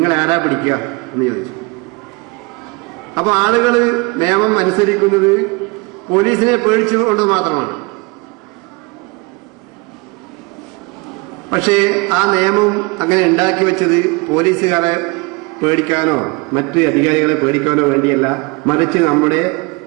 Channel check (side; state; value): left; quieter; 27.5 dB